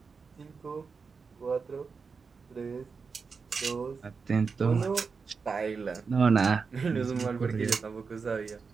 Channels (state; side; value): quieter; left; 5.1 dB